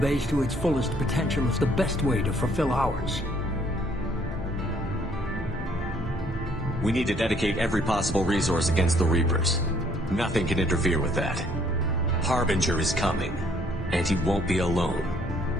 to its fullest potential is the best way to fulfill ours. We need to dedicate every possible resource against the Reapers. Nothing can interfere with that. Harbinger is coming, and he won't be alone.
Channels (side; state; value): both; normal; correlation 0.64